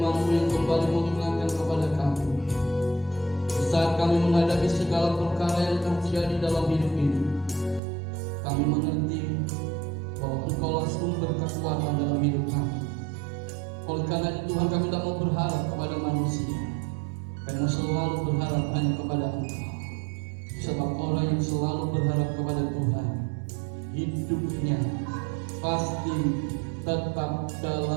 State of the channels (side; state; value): left; drops out; at 7.8 s